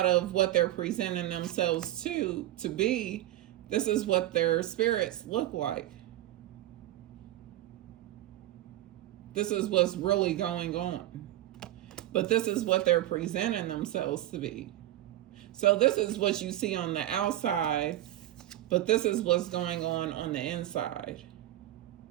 of what they're presenting themselves to be, this is what their spirits look like. This is what's really going on. But this is what they're presenting themselves to be. So this is what you see on the outside, but this is what's going on the inside.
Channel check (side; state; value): left; quieter; 14.3 dB